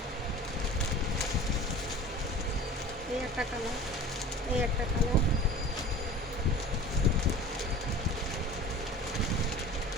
এই একটা কালার, এই একটা কালার,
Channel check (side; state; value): both; normal; correlation 0.40